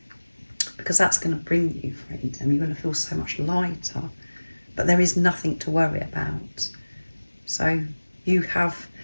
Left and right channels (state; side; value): inverted; both; correlation -1.00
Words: Because that's going to bring you freedom. You're going to feel so much lighter. But there is nothing to worry about. So you have